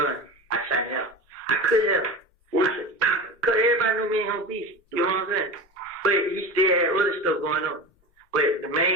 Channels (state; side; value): normal; both; correlation 0.29